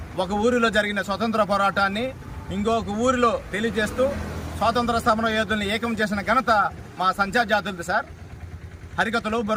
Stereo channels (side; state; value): both; identical; correlation 1.00